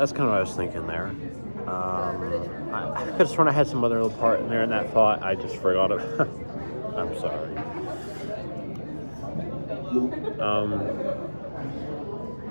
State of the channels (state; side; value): inverted; both; correlation -1.00